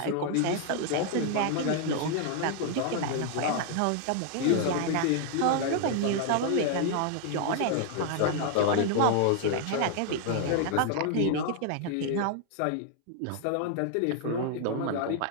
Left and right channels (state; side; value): different; both; correlation 0.00